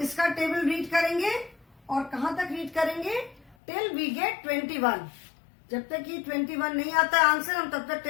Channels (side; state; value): right; drops out; at 3.6 s